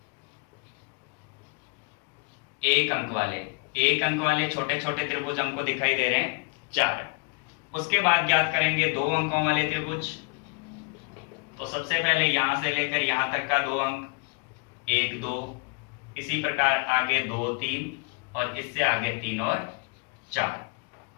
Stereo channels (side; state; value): right; quieter; 33.2 dB